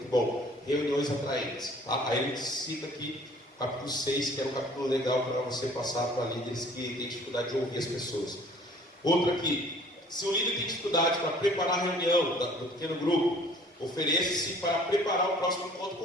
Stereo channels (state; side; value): normal; both; correlation 0.53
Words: bom. Reuniões Atraentes. Tá? Aí ele cita aqui o capítulo 6, que é um capítulo legal para você passar para líderes que têm dificuldade de ouvir as pessoas. Outro aqui. Se o líder tem dificuldade para preparar a reunião do pequeno grupo, ofereça-se para preparar o próximo encontro